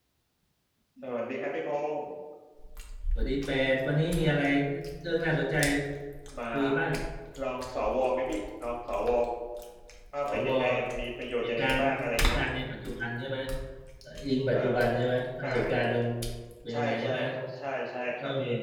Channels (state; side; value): identical; both; correlation 1.00